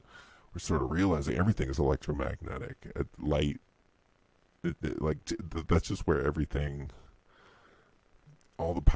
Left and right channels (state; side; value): identical; both; correlation 1.00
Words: we're sort of realizing. Everything is electromagnetic. Light, that's just where everything, all the